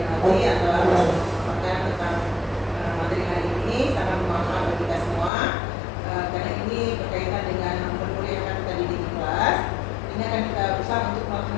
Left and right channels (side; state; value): right; drops out; at 5.3 s